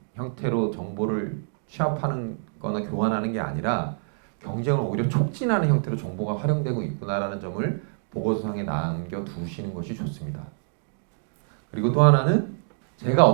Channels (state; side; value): silent; left; digital silence